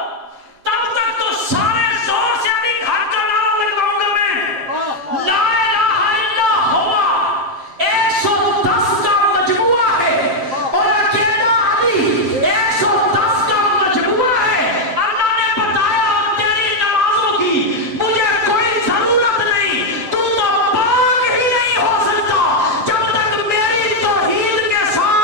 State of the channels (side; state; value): left; late; 7.6 ms